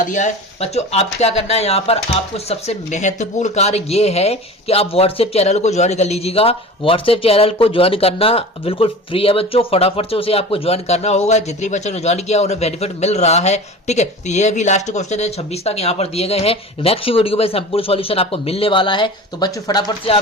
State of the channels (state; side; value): normal; both; correlation 0.35